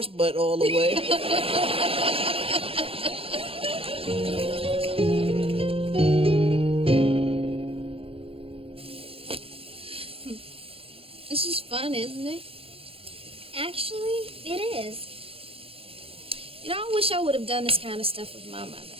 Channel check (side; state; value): left; late; 0.27 ms